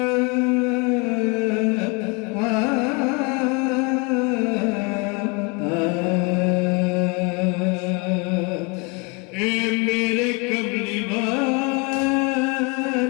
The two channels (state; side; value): quieter; right; 30.9 dB